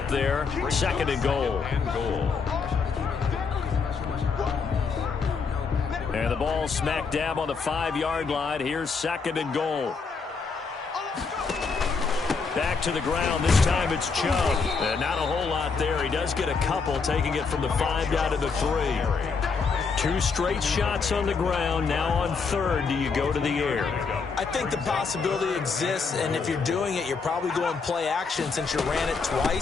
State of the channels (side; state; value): right; quieter; 5.0 dB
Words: there. Second and goal. And the ball smack dab on the 5-yard line. Here's second and goal. Back to the ground. This time it's Chubb. And not a whole lot there. He does get a couple, taking it from the 5 down to the 3. 2 straight shots on the ground. Now on third, do you go to the air? I think the possibility exists, and if you're doing it, you're probably going play action since you ran it